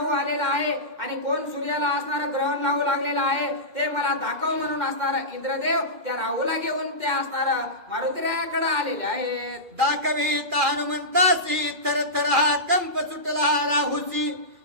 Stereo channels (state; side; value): late; left; 2.4 ms